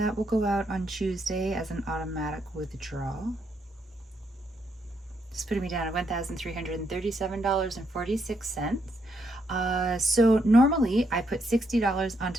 will go out on Tuesday as an automatic withdrawal. It's putting me down at $1,337.46. So normally I put $60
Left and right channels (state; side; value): normal; both; correlation 0.76